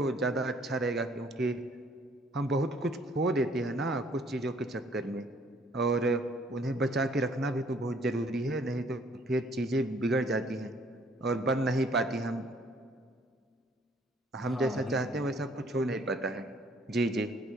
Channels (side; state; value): both; normal; correlation 0.61